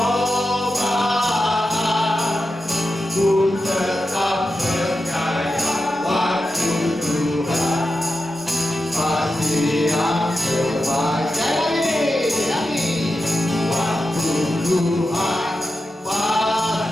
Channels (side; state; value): both; normal; correlation 0.90